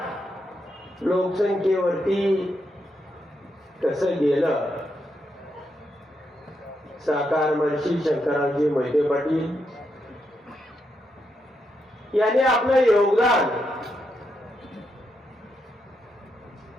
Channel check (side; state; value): both; normal; correlation 0.82